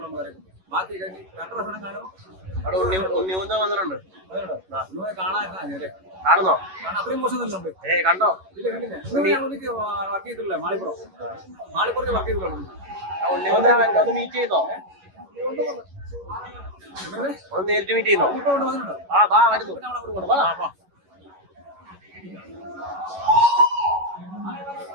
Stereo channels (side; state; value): left; late; 11 ms